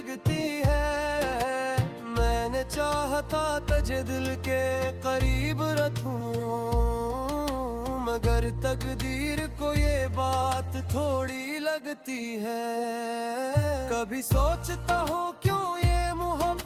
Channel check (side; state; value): both; identical; correlation 1.00